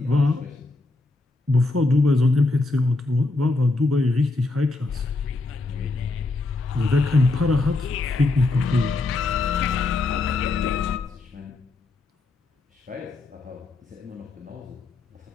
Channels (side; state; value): right; quieter; 3.2 dB